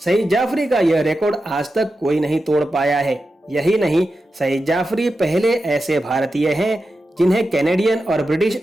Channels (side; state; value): both; normal; correlation 0.91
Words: सईद जाफरी का यह रिकॉर्ड आज तक कोई नहीं तोड़ पाया है। यही नहीं, सईद जाफरी पहले ऐसे भारतीय हैं जिन्हें कैनेडियन और ब्रिटिश